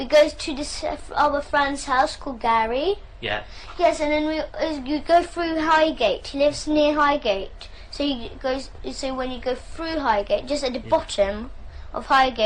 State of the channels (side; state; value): both; identical; correlation 1.00